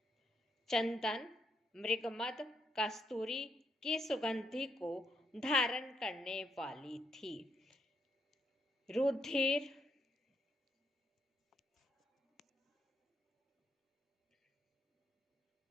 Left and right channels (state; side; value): normal; both; correlation 0.77